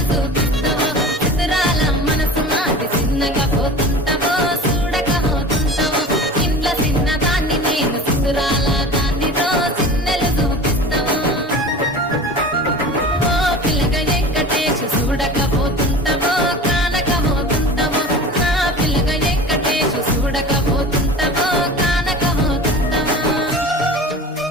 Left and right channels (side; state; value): both; normal; correlation 0.36